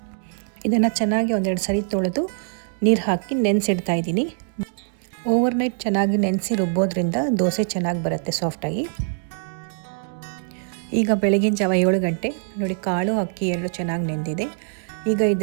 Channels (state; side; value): silent; left; digital silence